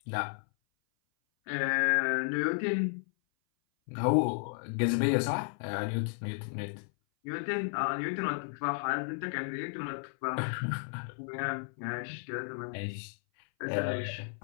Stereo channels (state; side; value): silent; right; 56 dB below the other